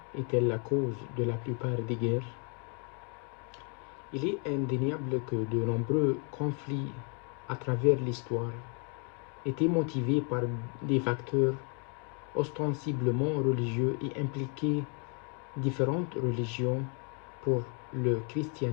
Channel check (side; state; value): right; quieter; 38.0 dB